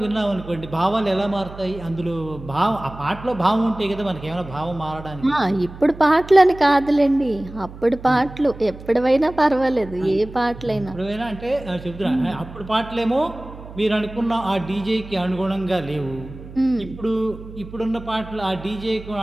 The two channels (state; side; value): noise; right; hum, 15 dB below the sound